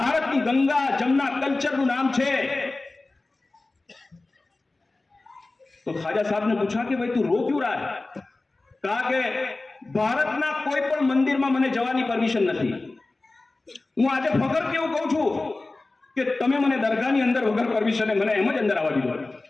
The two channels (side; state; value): right; quieter; 3.2 dB